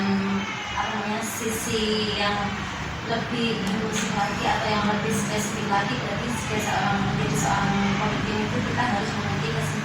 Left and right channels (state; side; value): identical; both; correlation 1.00